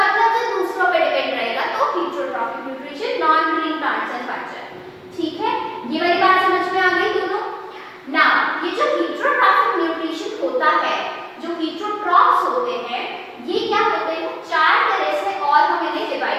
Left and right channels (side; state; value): both; identical; correlation 1.00